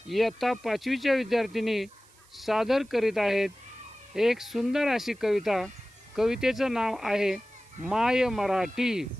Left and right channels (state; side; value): noise; right; hiss, 28 dB below the sound